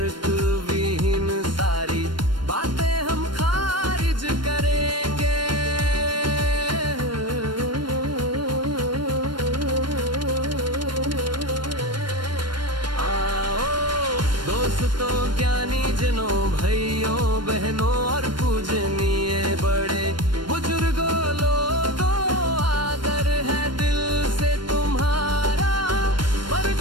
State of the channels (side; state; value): left; late; 0.72 ms